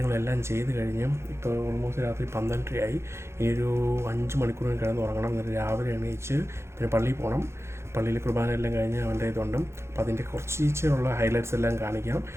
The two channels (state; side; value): late; left; 0.13 ms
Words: ചെയ്ത് കഴിഞ്ഞ് ഇപ്പോൾ ഓൾമോസ്റ്റ് രാത്രി 12:30 ഇനി ഒരു 5 മണിക്കൂർ കിടന്ന് ഉറങ്ങണം. എന്നിട്ട് രാവിലെ എണീച്ച് പിന്നെ പള്ളിയിൽ പോകണം. പള്ളിയിൽ കുർബാന എല്ലാം കഴിഞ്ഞ് അവൻ്റെ ഇതുണ്ട്. അപ്പോൾ അതിൻ്റെ കുറച്ചുള്ള ഹൈലൈറ്റ്സ് എല്ലാം കാണിക്കാം